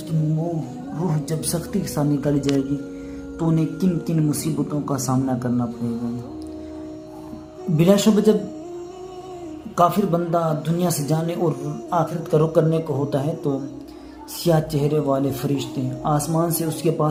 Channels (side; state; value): both; identical; correlation 1.00